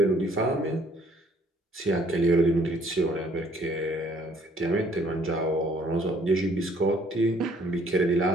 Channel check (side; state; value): both; normal; correlation 0.61